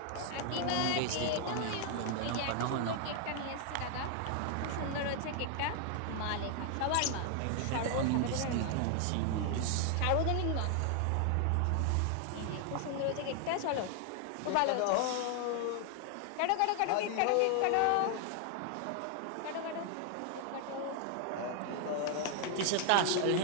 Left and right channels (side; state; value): both; different; correlation 0.00